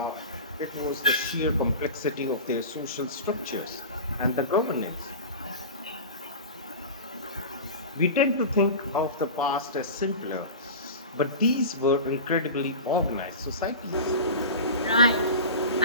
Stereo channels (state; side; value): inverted; both; correlation -0.31